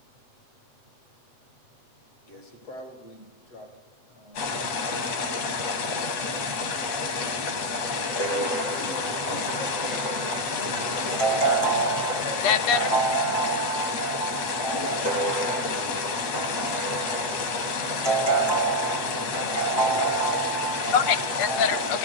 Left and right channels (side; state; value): right; late; 8.2 ms